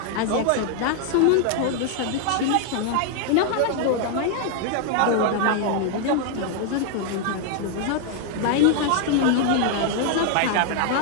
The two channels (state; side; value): different; both; correlation 0.00